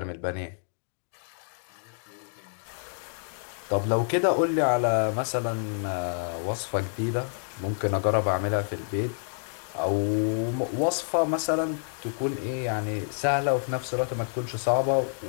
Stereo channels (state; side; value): silent; right; digital silence